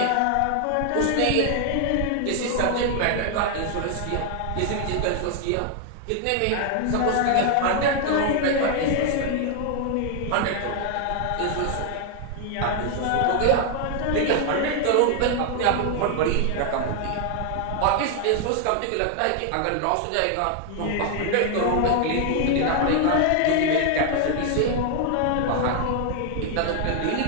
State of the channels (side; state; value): both; different; correlation 0.00